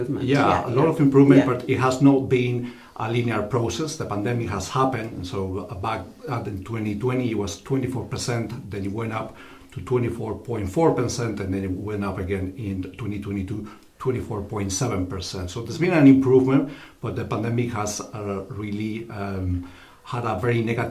Yeah, a lot of improvement, but it has not been a linear process. The pandemic has happened, and so back in 2020 it was 24%, then it went up to 24.4%, and then it went up again in 2022, 24.7%. So there's been an improvement, but the pandemic has really had a very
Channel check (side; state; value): both; identical; correlation 1.00